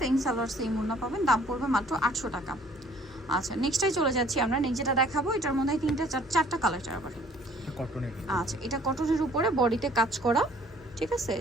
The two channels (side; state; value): both; normal; correlation 0.57